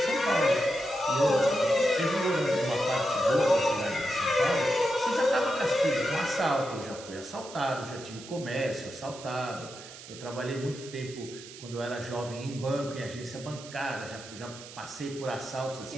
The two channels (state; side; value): noise; right; hiss, 15 dB below the sound